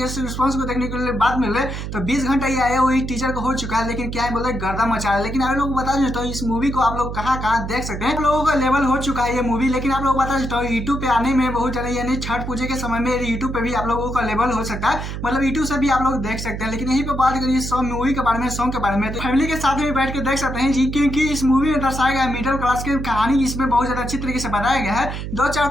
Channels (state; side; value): noise; right; hum, 6 dB below the sound